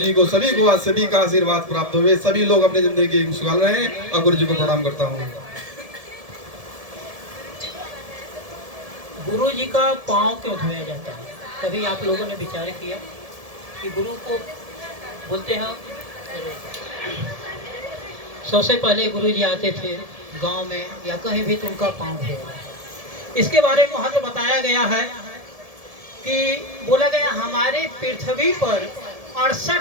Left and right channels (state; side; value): late; left; 1.7 ms